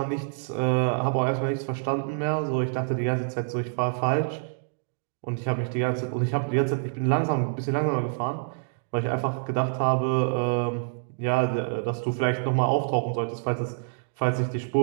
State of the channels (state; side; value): silent; left; digital silence